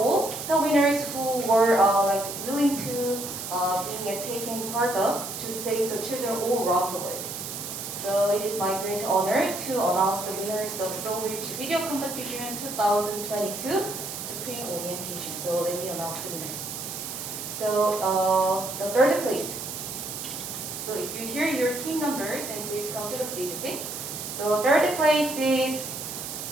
the winners who were willing to taking part of to save the children all around the world. So it is my great honor to announce the winners of SolBridge Video Competition 2022 Spring Orientation. So let me announce the winner. So the third place. So if you hear your team numbers, then please come to the stage, okay? So third place is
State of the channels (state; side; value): noise; right; hiss, 7 dB below the sound